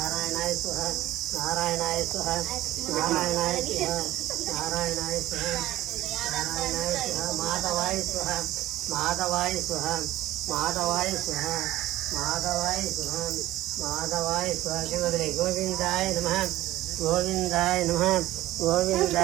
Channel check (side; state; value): left; quieter; 15.4 dB